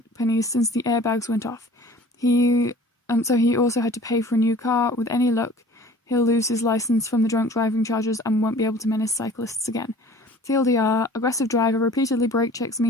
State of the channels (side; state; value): both; normal; correlation 0.47